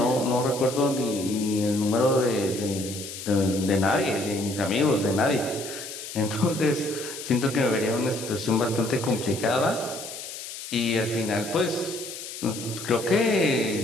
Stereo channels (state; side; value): noise; left; hiss, 10 dB below the sound